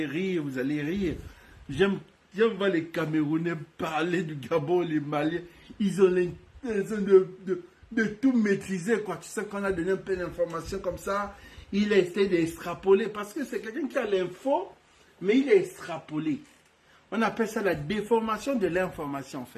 rire. J'aime voir les Camerounais parler du Gabon, les Maliens. Ils ont l'intention de tout maîtriser, quoi. Tu sais qu'on a donné un peu d'informations comme ça. Il a essayé d'extrapoler. Parce que c'est quelqu'un qui a l'info, mais il a extrapolé. On appelle ça la déformation de l'information, en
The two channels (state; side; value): identical; both; correlation 1.00